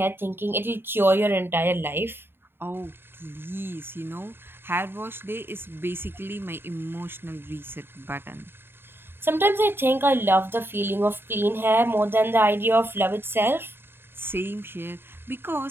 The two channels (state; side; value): late; left; 0.11 ms